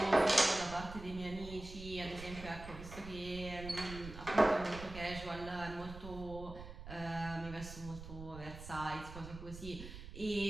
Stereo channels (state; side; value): noise; right; rumble, 12 dB below the sound